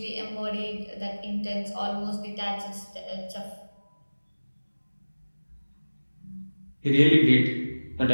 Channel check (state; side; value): inverted; both; correlation -1.00